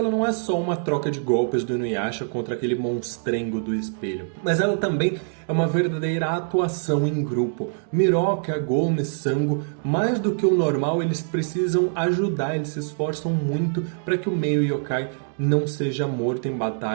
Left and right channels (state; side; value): silent; left; digital silence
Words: não é só uma troca de golpes do Inuyasha contra aquele monstrengo do espelho, mas ela também é uma verdadeira atuação em grupo. Miroka, Agome, Sango, mais do que o normal, eles precisam ajudar, eles se esforçam muito para que o meio yokai não seja morto em